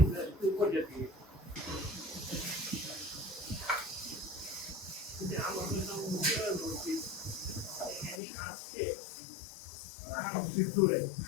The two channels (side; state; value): right; drops out; at 8.2 s